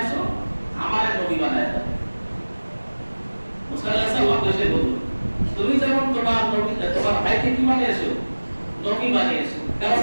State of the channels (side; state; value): both; inverted; correlation -1.00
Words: আমারে নবী বানায় দাও। মুসা আলাইহিস সালাম এসে বলল তুমি যেমন তোমার নবী, তোমার ভাইকে কি বানিয়েছো? নবী বানিয়েছো। কারণ